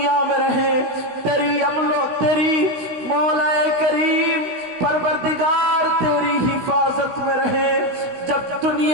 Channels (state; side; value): late; left; 16 ms